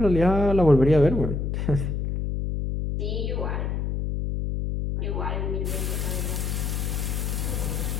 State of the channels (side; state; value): left; noise; hum, 1 dB below the sound